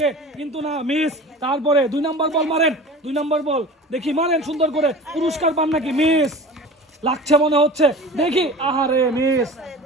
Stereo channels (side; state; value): both; normal; correlation 0.37